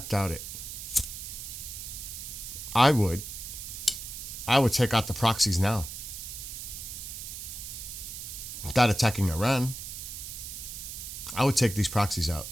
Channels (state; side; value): noise; right; hiss, 8 dB below the sound